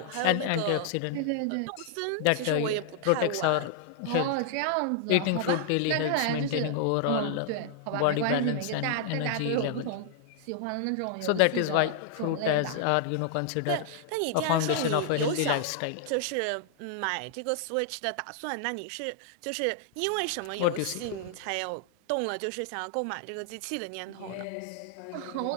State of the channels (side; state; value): both; different; correlation -0.01